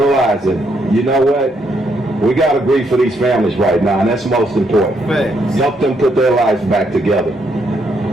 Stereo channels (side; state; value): both; normal; correlation 0.75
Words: you know what, we got to grieve for these families right now, and that's most important. Help them put their lives back together.